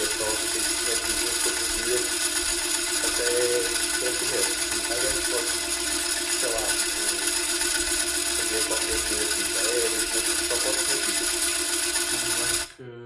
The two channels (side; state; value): both; identical; correlation 1.00